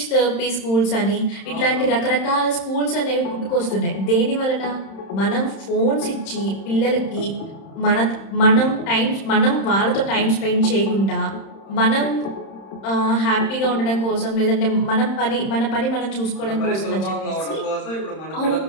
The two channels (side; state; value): right; late; 31 ms